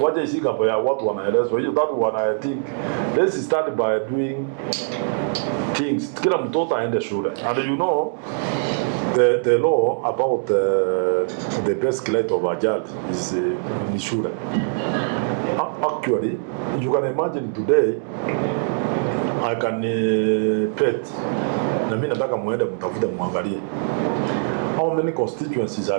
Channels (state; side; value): silent; left; digital silence